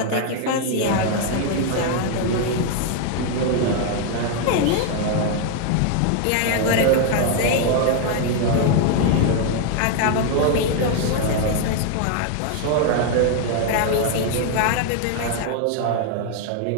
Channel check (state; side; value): different; both; correlation 0.00